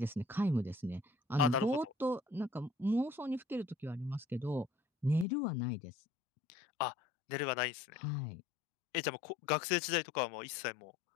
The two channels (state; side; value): drops out; right; at 5.2 s